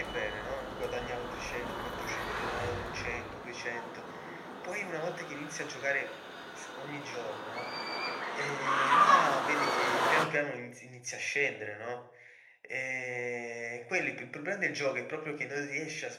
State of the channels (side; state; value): both; identical; correlation 1.00